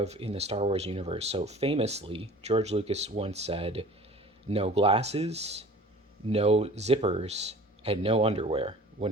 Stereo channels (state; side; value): normal; both; correlation 0.44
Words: in the Star Wars universe. So famously, George Lucas once said, no glasses, no zippers, and no underwear,